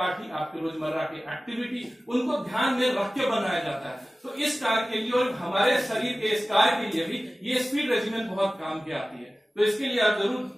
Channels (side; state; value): both; normal; correlation 0.97